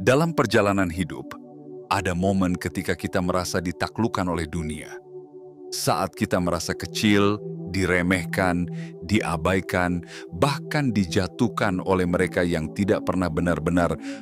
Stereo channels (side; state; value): both; identical; correlation 1.00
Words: Dalam perjalanan hidup, ada momen ketika kita merasa ditaklukkan oleh dunia. Saat kita merasa kecil, diremehkan, diabaikan, bahkan dijatuhkan oleh mereka yang tidak pernah benar-benar